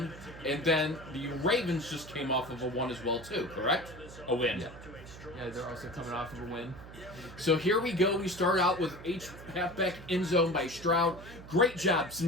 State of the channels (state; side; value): noise; right; hum, 16 dB below the sound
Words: and then the Ravens just came off of a win as well too, correct? A win. Yeah, they're also coming off of a win. So here we go. We start out with halfback end zone by Stroud. Great job.